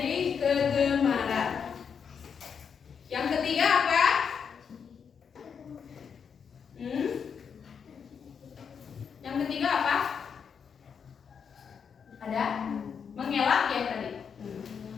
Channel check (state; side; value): quieter; right; 6.8 dB